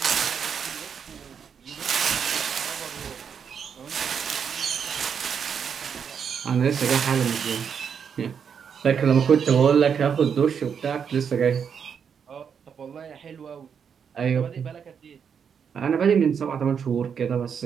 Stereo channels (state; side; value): quieter; left; 7.1 dB